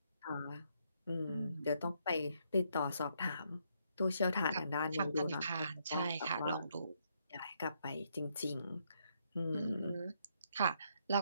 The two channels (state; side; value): inverted; both; correlation -0.74